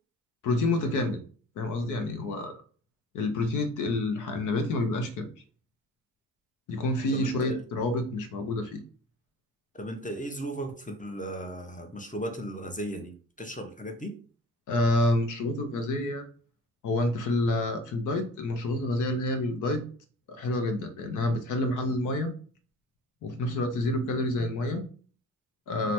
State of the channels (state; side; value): normal; both; correlation 0.45